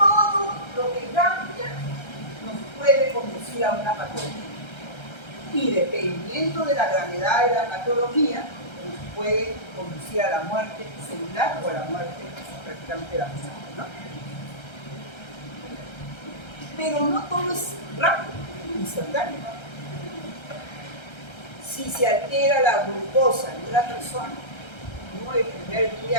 lo que cambia nos puede conducir a una patología. Y dependiendo de la gravedad de la patología, nos puede conducir a la muerte celular o a la muerte prácticamente la muerte, ¿no? Pero no todo es rápido, instantáneo. Si se altera la glucosa de una persona, no el primer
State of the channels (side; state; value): right; late; 1.3 ms